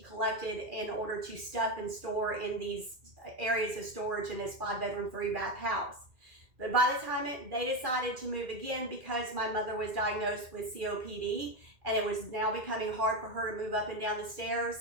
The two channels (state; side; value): late; left; 2.4 ms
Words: collected in order to stuff and store in these areas of storage in this 5-bedroom, 3-bath house. But by the time they decided to move again, because my mother was diagnosed with COPD and it was now becoming hard for her to move up and down the stairs,